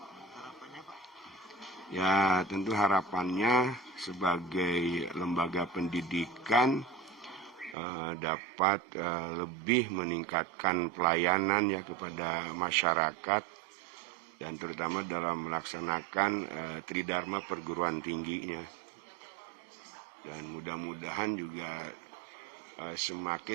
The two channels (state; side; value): drops out; left; at 7.8 s